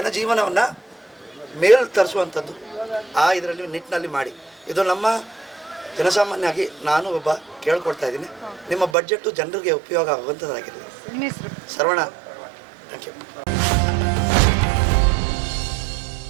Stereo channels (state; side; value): drops out; left; at 9.0 s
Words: ಮೇಲ್ ತರಿಸುವಂಥದ್ದು ಇದರಲ್ಲಿ ನಿಟ್ಟಿನಲ್ಲಿ ಮಾಡಿ. ಇದು ನಮ್ಮ ಜನಸಾಮಾನ್ಯವಾಗಿ ನಾನು ಒಬ್ಬ ಕೇಳ್ಕೊಳ್ತಾ ಇದ್ದೀನಿ. ನಿಮ್ಮ ಬಡ್ಜೆಟ್ಟು ಜನರಿಗೆ ಉಪಯೋಗ ಆಗುವಂಥದ್ದಾಗಿರಲಿ. Saravana, thank you.